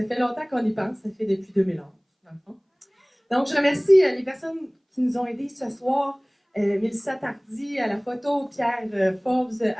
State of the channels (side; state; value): both; identical; correlation 1.00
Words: fait longtemps qu'on y pense, ça fait depuis 2011, dans le fond. Donc, je remercie les personnes qui nous ont aidés ce soir. Mélissa Tardy à la photo, Pierre Forbes